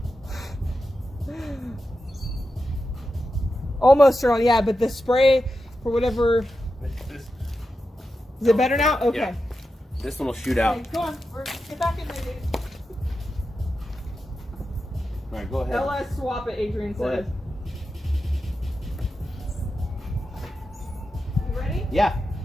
Almost turned on, yeah, but the spray, for whatever... Is it better now? Okay. Yeah. This one will shoot out. Okay, go on. Get back in there, dude. All right, go ahead. LS swap it, Adrian Go says. ahead. You ready? Yeah.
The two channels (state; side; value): normal; both; correlation 0.90